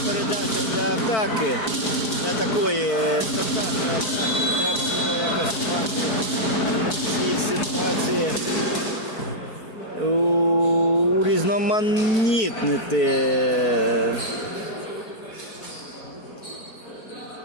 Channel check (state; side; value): late; right; 4.5 ms